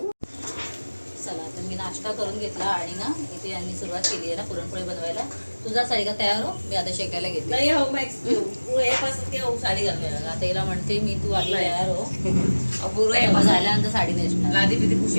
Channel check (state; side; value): inverted; both; correlation -1.00